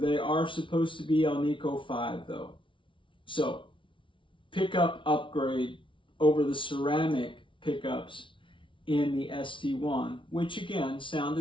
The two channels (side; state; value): right; late; 0.25 ms